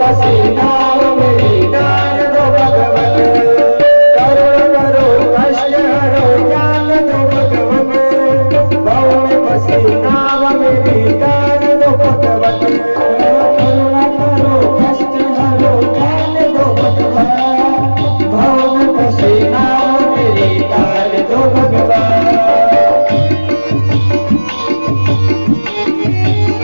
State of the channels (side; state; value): both; inverted; correlation -1.00